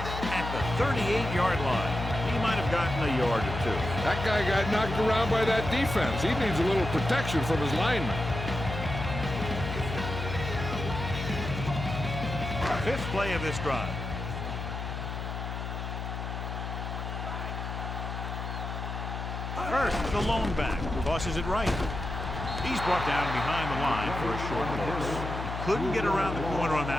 at the 38-yard line. He might have gotten a yard or two. That guy got knocked around by that defense. He needs a little protection from his lineman. 5th play of this drive. First, the lone back tosses it right. He's brought down behind the line for a short loss. He couldn't get around the corner on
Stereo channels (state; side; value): noise; left; hum, 5 dB below the sound